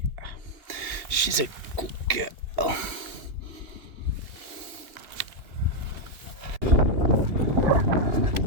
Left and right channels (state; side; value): late; left; 2.7 ms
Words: She's a good girl.